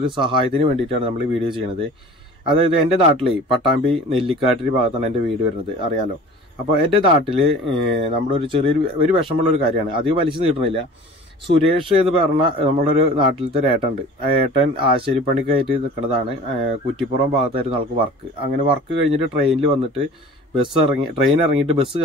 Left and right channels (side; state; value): both; normal; correlation 0.43